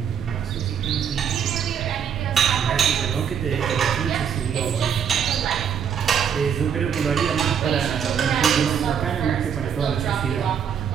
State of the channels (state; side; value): quieter; left; 7.9 dB